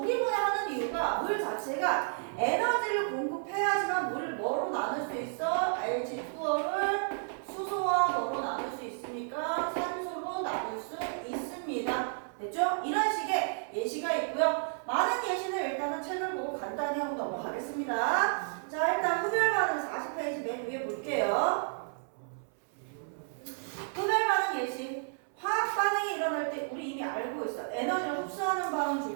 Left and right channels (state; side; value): silent; left; 57 dB below the other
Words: 분해하는 이유가 물 자체가 에너지를 공급해야지만 물을 뭐로 나눌 수 있어? H2O를 수소와 뭐로 나눌 수 있습니까? 산소로 나눌 수 있습니다. 됐죠? 이런 식의 예시가 있고요. 많은 예시는 일단은 책을 보고 간단히 하고 넘어가겠습니다. 자, 일단 흡열 반응 40페이지 맨 위에 볼게요. 흡열 반응 예시. 화학 반응이 일어날 때 우리 이미 알고 있어. 에너지를 흡수하는 반응